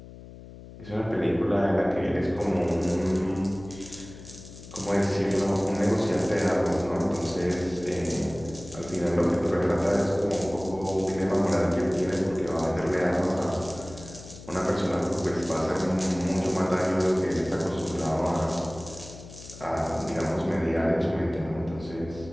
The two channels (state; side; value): noise; left; hum, 16 dB below the sound